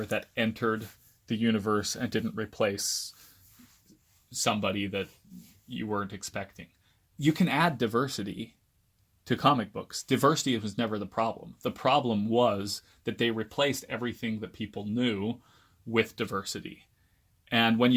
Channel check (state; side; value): identical; both; correlation 1.00